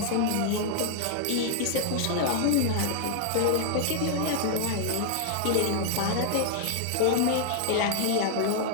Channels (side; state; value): both; different; correlation -0.01